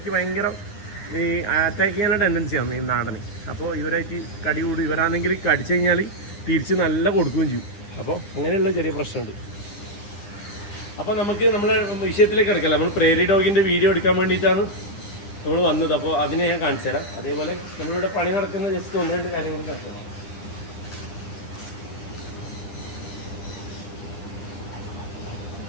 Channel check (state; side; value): late; right; 9.9 ms